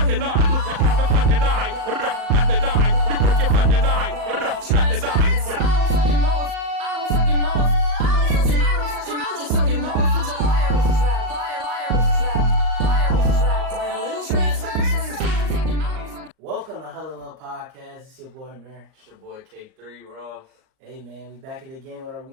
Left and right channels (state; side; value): late; left; 38 ms